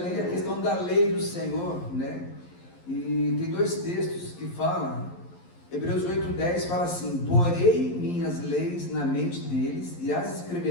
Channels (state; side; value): late; right; 11 ms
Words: a questão da lei do Senhor, né? E tem dois textos que falam. Hebreus 8:10 fala assim: porei minhas leis na mente deles e as